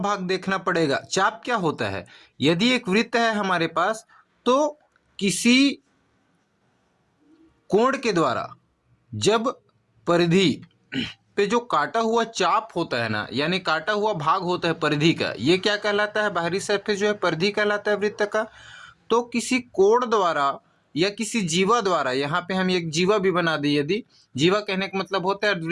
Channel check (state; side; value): identical; both; correlation 1.00